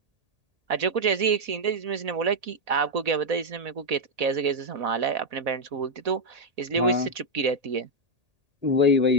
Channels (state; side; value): late; left; 1.8 ms